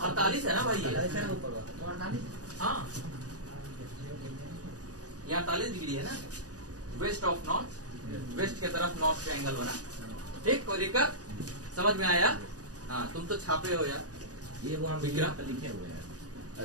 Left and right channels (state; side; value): late; left; 0.67 ms